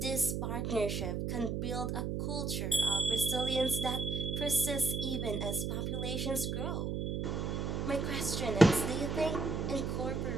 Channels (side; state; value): right; noise; hum, 1 dB below the sound